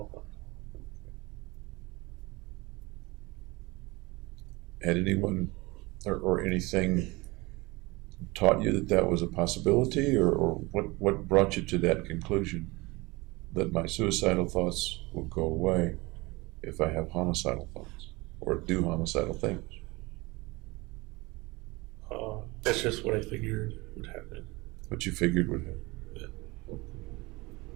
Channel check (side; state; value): left; quieter; 23.5 dB